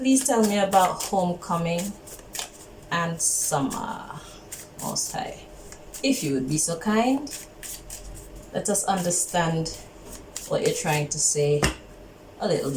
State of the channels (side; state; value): both; identical; correlation 1.00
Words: tell me about homecoming and summer, Most High. If you would be so kind, let us understand what you're trying to say a little